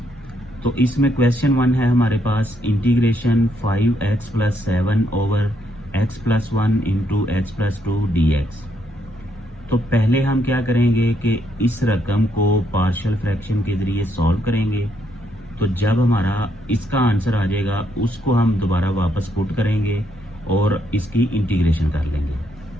तो इसमें क्वेश्चन 1 है हमारे पास, integration 5x + 7 over x + 1 into x + 2 dx। तो पहले हम क्या करेंगे कि इस रकम को पार्शियल फ्रैक्शन के जरिए सॉल्व करेंगे। तो जब हमारा इसका आंसर आ जाएगा उसको हम दोबारा वापस पुट करेंगे और इसकी इंटीग्रेशन कर लेंगे।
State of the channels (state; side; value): normal; both; correlation 0.74